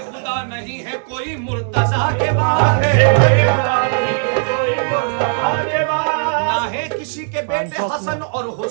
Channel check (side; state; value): left; silent; 58 dB below the other